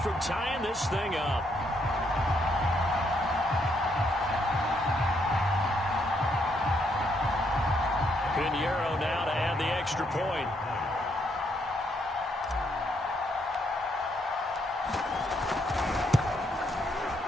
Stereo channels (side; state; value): both; normal; correlation 0.74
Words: from tying this thing up. Pinheiro now to add the extra point.